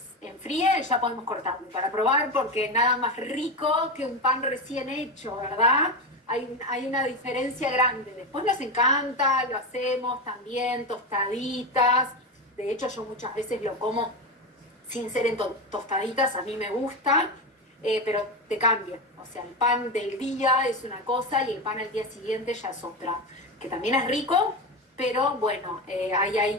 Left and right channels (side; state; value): both; normal; correlation 0.17